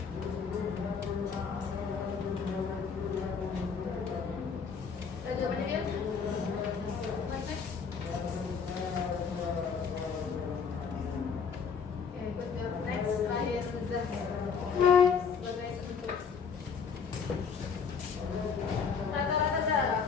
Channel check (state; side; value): quieter; right; 6.1 dB